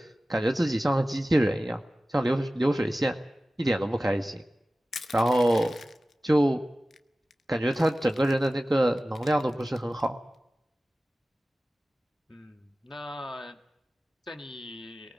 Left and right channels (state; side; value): normal; both; correlation 0.96